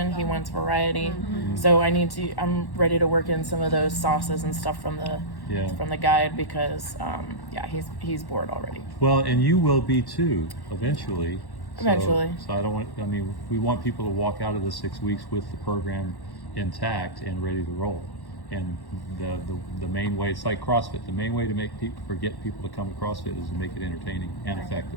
He wants variety. So I'm ready to work in some of those sauces and stuff from the guide because he's bored already. Well, and you will be too, eventually. Eventually. So we want people to walk out of the 6 weeks with the program intact and ready to roll. And the main way, it's like CrossFit, the main way to get people to come to CrossFit is to make it entertaining and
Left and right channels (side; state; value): right; late; 1.1 ms